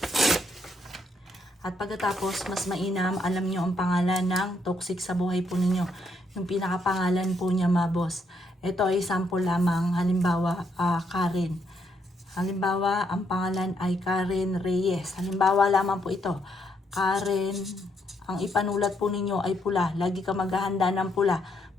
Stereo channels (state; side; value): normal; both; correlation 0.74